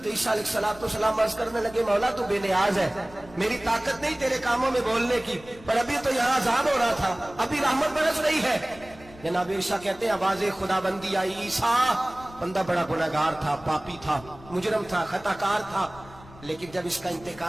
ईसा अलैहिस्सलाम अर्ज करने लगे, मौला तू बेनियाज है, मेरी ताकत नहीं तेरे कामों में बोलने की, पर अभी तो यहाँ अजाब हो रहा था, अभी रहमत बरस रही है। जनाब ईसा कहते हैं, आवाज़े खुदाबंदी आई, ईसा बंदा बड़ा गुनहगार था, पापी था, मुजरम था, खताकार था, लेकिन जब इसका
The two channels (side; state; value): left; noise; rumble, 21 dB below the sound